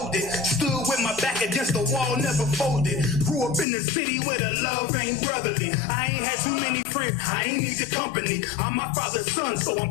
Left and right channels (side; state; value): right; drops out; at 3.7 s